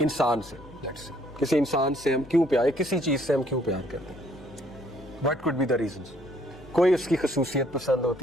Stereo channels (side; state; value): left; noise; hum, 22 dB below the sound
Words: سے, کسی انسان سے ہم کیوں پیار, کسی چیز سے ہم کیوں پیار کرتے ہیں, what could be the reasons. کوئی اس کی خصوصیت پسند